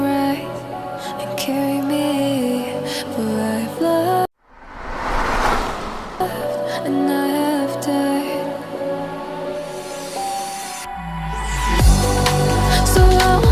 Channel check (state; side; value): identical; both; correlation 1.00